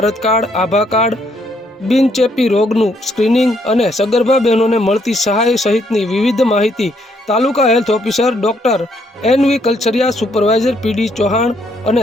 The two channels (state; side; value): normal; both; correlation 0.71